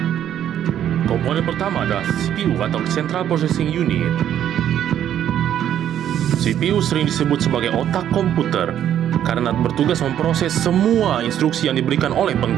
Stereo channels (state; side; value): quieter; left; 10.5 dB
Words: Komponen pertama adalah CPU atau Central Processing Unit. CPU sering disebut sebagai otak komputer karena bertugas memproses semua instruksi yang diberikan oleh